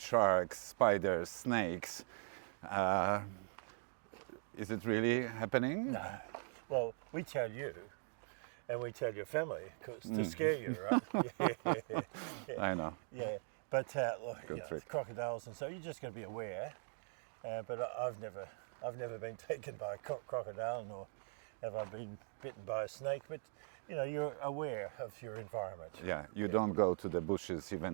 spiders, snakes. Is it really happening? No, well, we tell you, and we tell your family, 'cause to scare you, right? Yeah. I know. Yeah, but look, trick. crocodiles, and so you just got to be aware. But I've never been taken by a crocodile, nor have I been bitten by a snake. But you're aware of your environment. Yeah, you don't go to the bushes,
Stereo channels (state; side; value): silent; left; 50 dB below the other